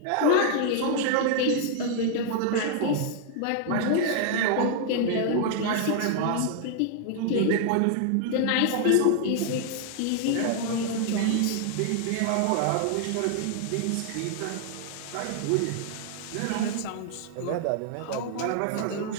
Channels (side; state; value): both; different; correlation 0.00